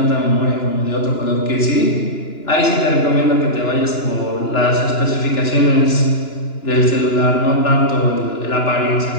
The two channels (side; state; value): right; late; 2.9 ms